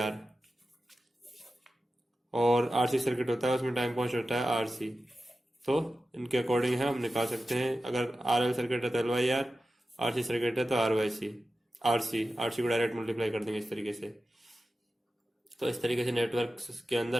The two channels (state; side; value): normal; both; correlation 0.93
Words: और RC सर्किट होता है उसमें टाइम कांस्टेंट होता है RC। तो इनके अकॉर्डिंग है हम निकाल सकते हैं। अगर RL सर्किट है तो L/R, RC सर्किट है तो R/C। RC को डायरेक्ट मल्टीप्लाई कर देंगे इस तरीके से। तो इस तरीके से नेटवर्क के